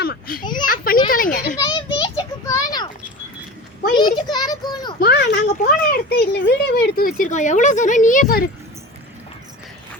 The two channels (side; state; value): both; normal; correlation 0.33